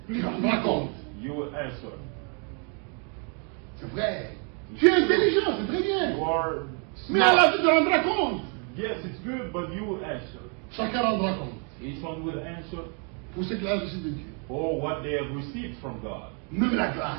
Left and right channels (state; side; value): quieter; left; 38.6 dB